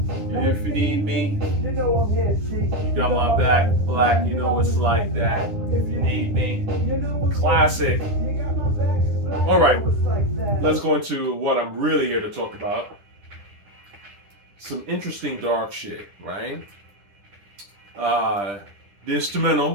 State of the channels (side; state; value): left; late; 10 ms